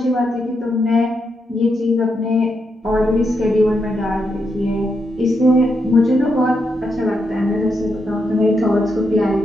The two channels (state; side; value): normal; both; correlation 0.82